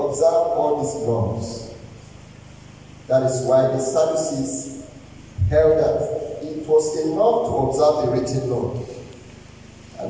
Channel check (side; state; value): both; identical; correlation 1.00